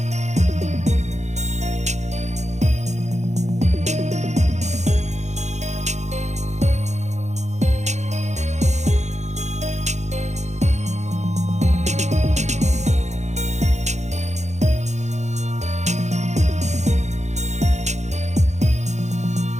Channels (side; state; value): left; late; 0.33 ms